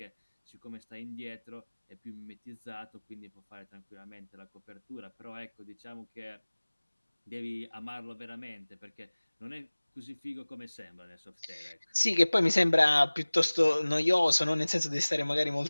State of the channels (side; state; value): both; inverted; correlation -1.00